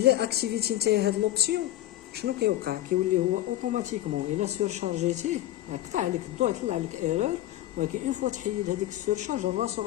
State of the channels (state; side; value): quieter; right; 14.4 dB